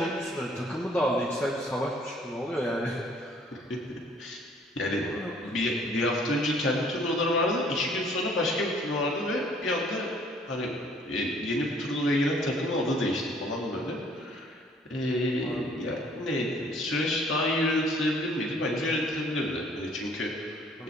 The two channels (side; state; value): both; normal; correlation 0.59